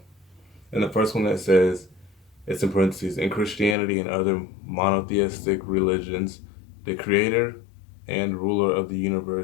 And the first one that says it's in parentheses, in Christianity and other monotheistic religions, the creator and ruler of the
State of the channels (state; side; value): drops out; right; at 3.8 s